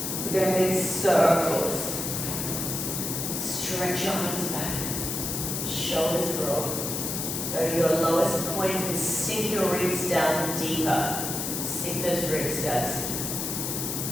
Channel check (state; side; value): noise; left; hiss, 3 dB below the sound